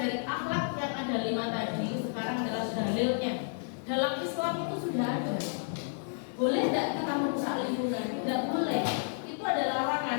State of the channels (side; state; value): right; silent; 57 dB below the other